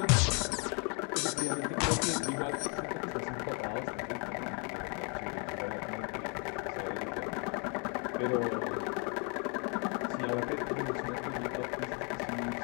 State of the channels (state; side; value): quieter; right; 35.9 dB